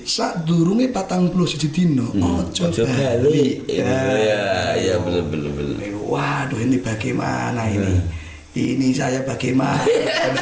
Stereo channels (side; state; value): both; identical; correlation 1.00